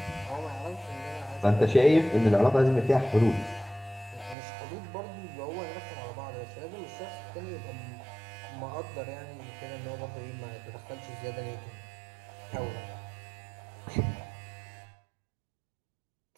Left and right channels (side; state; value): left; drops out; at 4.4 s